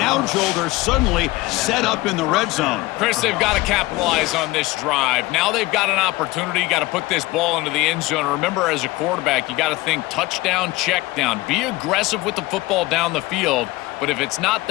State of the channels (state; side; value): quieter; right; 20.0 dB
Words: Joel, they're suddenly set up in the red zone. Chris, they've got to capitalize on this drive. Now they've got an opportunity. You got to put this ball into the end zone. Remember, as a quarterback, you got to think touchdown, check down. Be aggressive with the football down the field. But if it's not